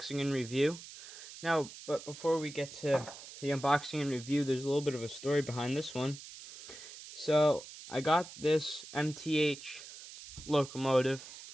and review. But before we get to the unboxing and review, there's a little bit of a story behind this one. So, I got this MTH locomotive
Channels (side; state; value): right; noise; hiss, 14 dB below the sound